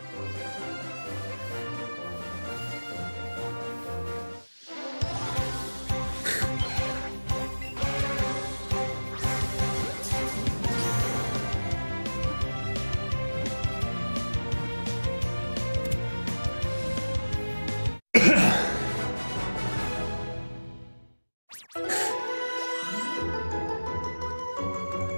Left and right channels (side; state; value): both; inverted; correlation -1.00